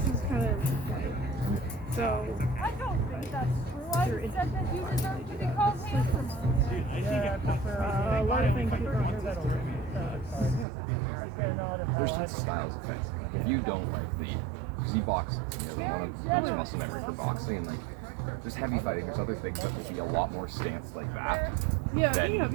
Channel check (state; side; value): drops out; left; at 10.7 s